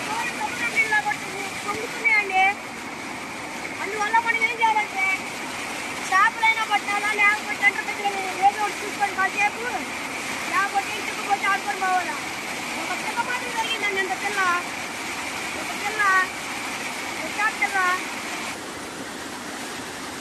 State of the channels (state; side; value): identical; both; correlation 1.00